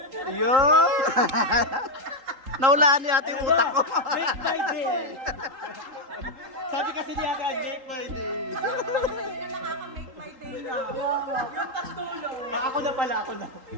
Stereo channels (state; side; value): late; left; 3.8 ms